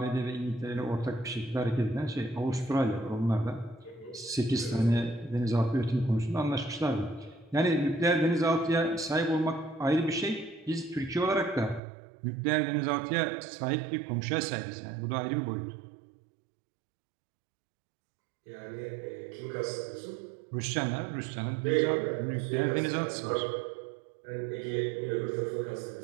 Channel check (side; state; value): left; drops out; at 11.8 s